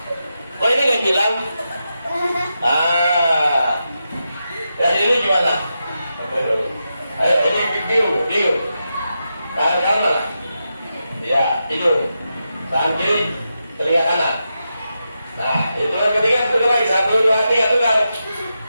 Oh ini nggak hilang. Dan ini gimana? Ayo, ini bingung. Tangan kanan mana? Ya, hidung. Tangan kiri, telinga kanan. Nah, hitungan ketiga tukar lagi. 1, 2, 3 tukar.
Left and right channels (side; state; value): both; inverted; correlation -0.88